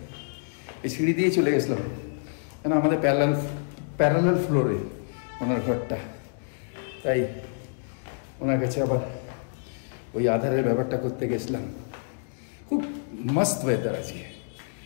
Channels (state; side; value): silent; right; digital silence